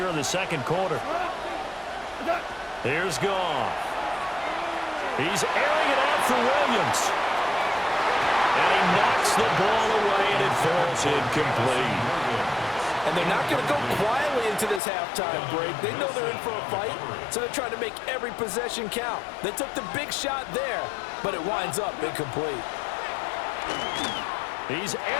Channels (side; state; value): right; drops out; at 14.8 s